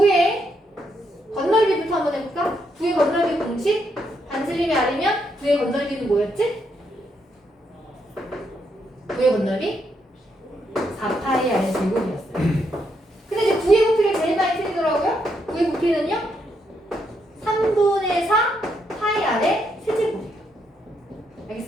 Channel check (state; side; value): normal; both; correlation 0.78